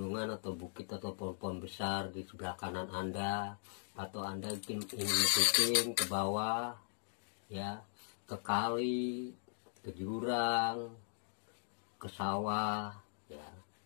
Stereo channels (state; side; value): silent; right; digital silence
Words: atau bukit atau pohon-pohon besar di sebelah kanan Anda, atau Anda ingin syuting ke bawah, ya, ke kali, ke jurang, ke sawah, ya.